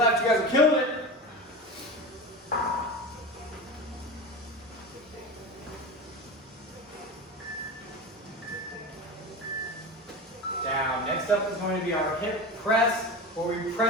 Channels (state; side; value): normal; both; correlation 0.27